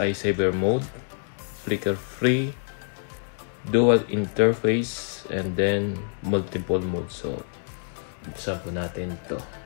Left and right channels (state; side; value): silent; right; digital silence